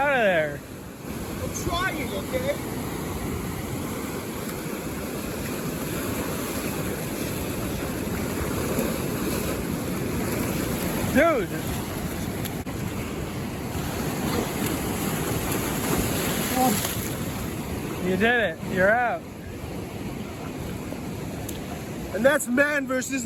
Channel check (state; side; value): identical; both; correlation 1.00